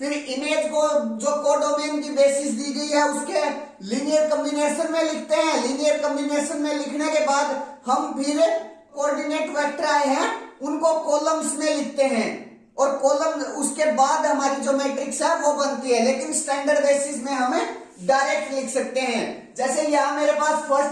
इमेज को जो कोडोमेन की बेसिस दी गई है उसके लीनियर कॉम्बिनेशन में लिखते हैं। लीनियर कॉम्बिनेशन में लिखने के बाद हम फिर कोऑर्डिनेट वेक्टर आए हैं उनको कॉलम्स में लिखते हैं और कॉलम उसके बाद हमारी जो मैट्रिक्स है वो बनती है। लेकिन स्टैंडर्ड बेसिस में हमें डायरेक्ट लिख सकते हैं। जैसे यहां मेरे पास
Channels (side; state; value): both; identical; correlation 1.00